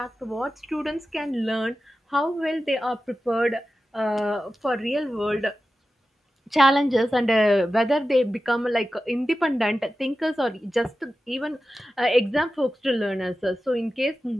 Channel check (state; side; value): normal; both; correlation 0.93